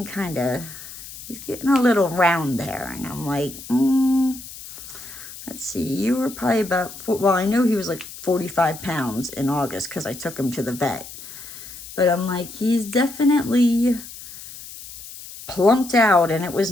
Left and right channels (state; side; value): noise; left; hiss, 14 dB below the sound